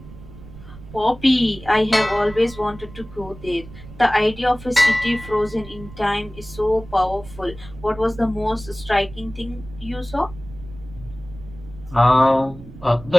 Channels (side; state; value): right; noise; rumble, 17 dB below the sound